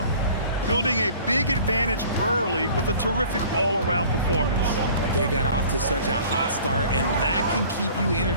Building a big advantage early with a terrific all-around performance. They got off to such a hot start, and that can keep you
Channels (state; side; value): inverted; both; correlation -0.48